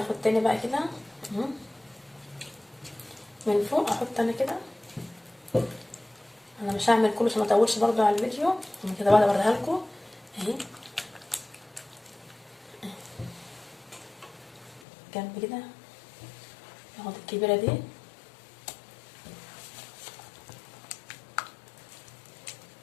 تاني بقى كده من فوق، احط انا كده. انا مش هعمل كله عشان ما اطولش برضو على الفيديو، انا كده بقى اوريها لكم اهي جنب كده. اخد الكبيره دي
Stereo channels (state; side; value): drops out; right; at 14.8 s